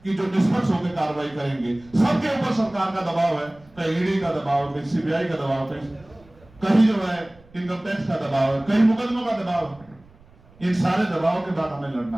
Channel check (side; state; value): right; noise; rumble, 27 dB below the sound